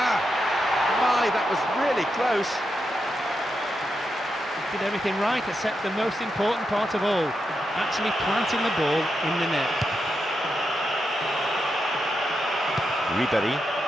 My, that was really close. Did everything right except the most important part of all, actually planting the ball in the net. Ribery.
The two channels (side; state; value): both; normal; correlation 0.85